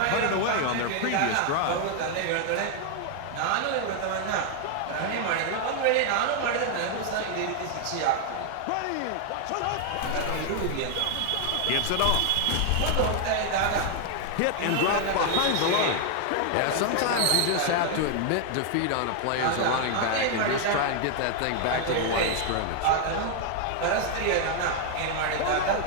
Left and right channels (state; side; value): different; both; correlation 0.00